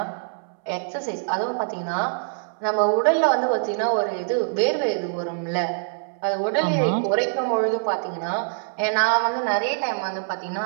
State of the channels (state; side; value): silent; left; 62 dB below the other